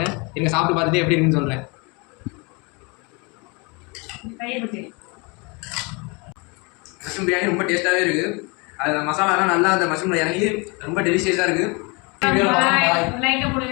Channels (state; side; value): quieter; right; 29.6 dB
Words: நீங்கள் சாப்பிட்டு பார்த்துட்டு எப்படி இருக்குன்னு சொல்கிறேன். தயிர் பச்சடி மஷ்ரூம் பிரியாணி ரொம்ப டேஸ்ட்டாகவே இருக்குது. அது மசாலாலாம் நல்லா அந்த மஷ்ரூமில் இறங்கி ரொம்ப டெலிஷியஸாக இருக்குது. லைக்கை